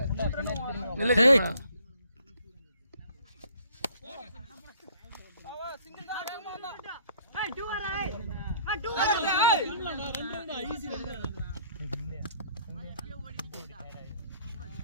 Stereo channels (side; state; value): both; inverted; correlation -0.59